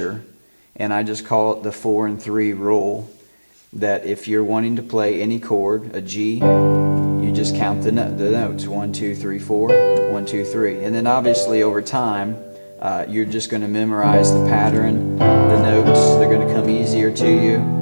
And I just call it the 4 and 3 rule, that if you're wanting to play any chord, a G, you just count the notes, 1, 2, 3, 4, 1, 2, 3. And then obviously over time, you're just going to memorize the pattern, the notes, they're going to come easier to you.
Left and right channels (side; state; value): both; inverted; correlation -1.00